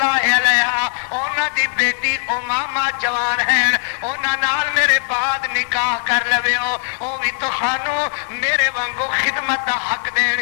علیہا انہاں دی بیٹی امامہ جوان ہیں انہاں نال میرے بعد نکاح کر لویو او بھی تہانوں میرے وانگو خدمت دا حق دین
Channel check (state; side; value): silent; right; digital silence